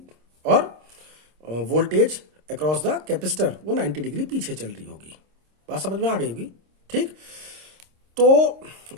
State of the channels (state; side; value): late; left; 26 ms